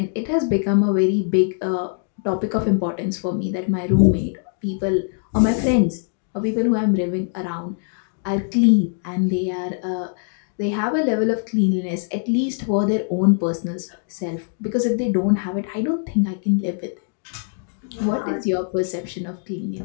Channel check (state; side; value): silent; right; digital silence